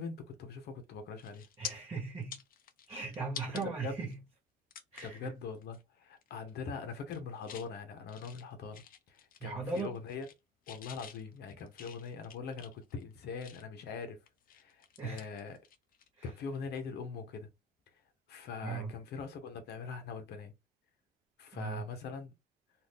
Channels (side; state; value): both; normal; correlation 0.33